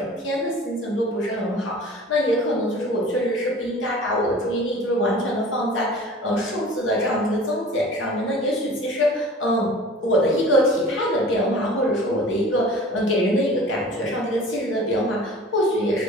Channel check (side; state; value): both; normal; correlation 0.43